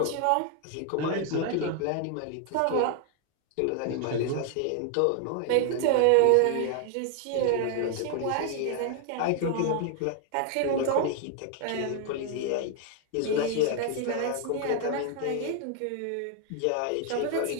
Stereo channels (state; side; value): different; both; correlation 0.00